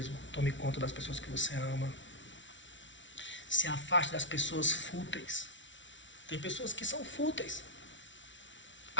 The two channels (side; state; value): right; late; 0.55 ms